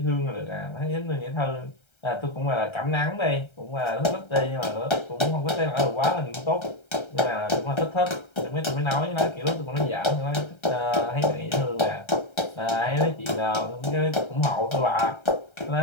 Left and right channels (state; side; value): late; right; 1.3 ms